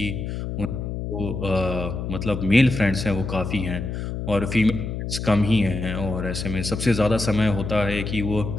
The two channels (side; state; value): left; noise; hum, 5 dB below the sound